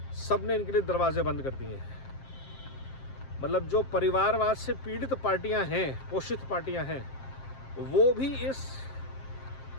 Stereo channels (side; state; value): right; late; 7.5 ms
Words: सब ने इनके लिए दरवाजे बंद कर दिए हैं। मतलब जो परिवारवाद से पीड़ित पार्टियां हैं, पोषित पार्टियां हैं, वो भी इस